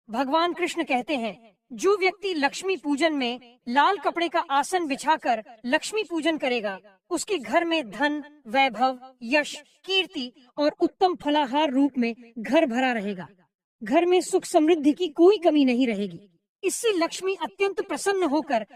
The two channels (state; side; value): identical; both; correlation 1.00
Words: भगवान कृष्ण कहते हैं, जो व्यक्ति लक्ष्मी पूजन में लाल कपड़े का आसन बिछाकर लक्ष्मी पूजन करेगा, उसके घर में धन, वैभव, यश, कीर्ति और उत्तम फलाहार रूप में घर भरा रहेगा। घर में सुख समृद्धि की कोई कमी नहीं रहेगी। इससे लक्ष्मी अत्यंत प्रसन्न होकर